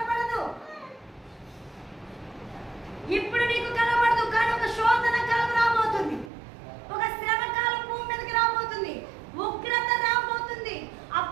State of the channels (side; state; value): left; drops out; at 6.3 s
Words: ఇప్పుడు నీకు కనబడదు. కానీ ఒక శోధన కాలం రాబోతుంది, ఒక శ్రమ కాలం భూమి మీదకి రాబోతుంది, ఉగ్రత రాబోతుంది,